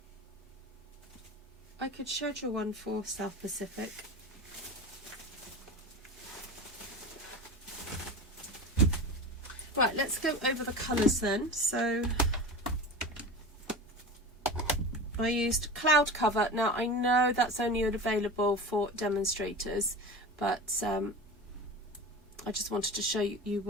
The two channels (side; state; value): both; normal; correlation 0.30